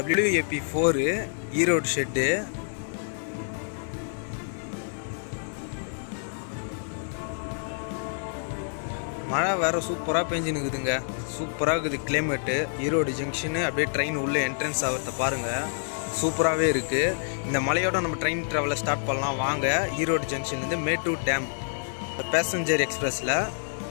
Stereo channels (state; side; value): silent; right; digital silence